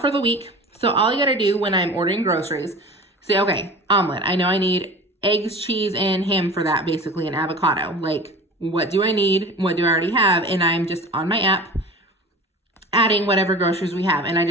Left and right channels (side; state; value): both; normal; correlation 0.37